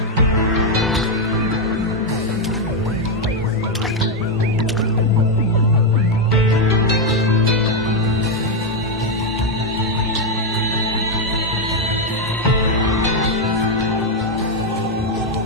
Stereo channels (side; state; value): both; normal; correlation 0.03